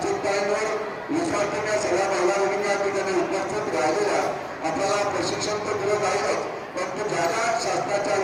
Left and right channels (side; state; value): both; identical; correlation 1.00